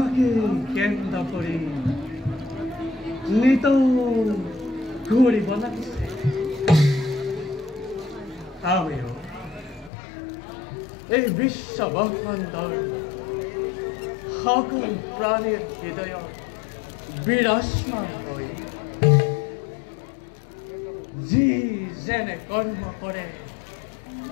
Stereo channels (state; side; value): drops out; right; at 9.9 s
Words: কেন্দ্র করে নিত ঘুরি বনাইছে আমিও এই বিশ্ব ব্রহ্মাণ্ডর সকল প্রাণীর হৃদয় বিরাজমান হই যি যেনে কর্ম করে